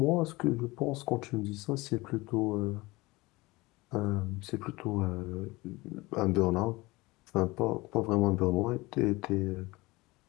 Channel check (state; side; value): quieter; right; 21.8 dB